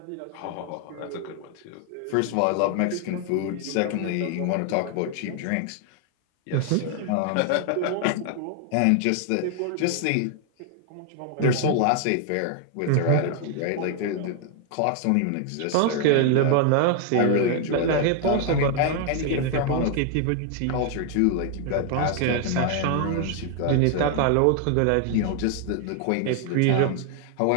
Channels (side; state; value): both; different; correlation 0.00